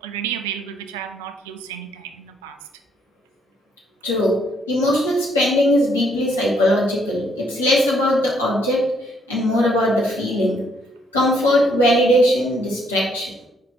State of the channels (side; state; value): both; normal; correlation 0.69